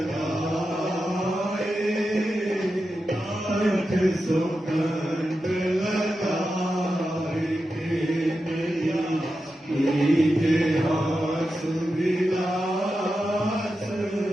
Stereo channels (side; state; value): both; normal; correlation 0.90